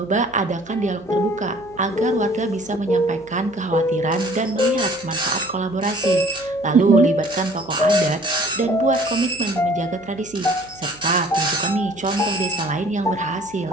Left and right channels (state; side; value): noise; right; hum, 23 dB below the sound